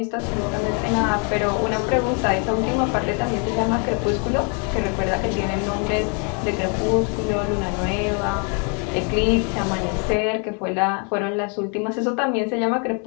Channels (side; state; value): right; quieter; 37.8 dB